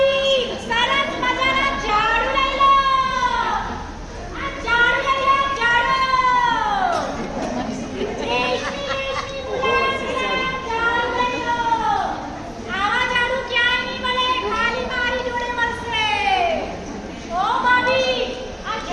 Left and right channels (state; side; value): identical; both; correlation 1.00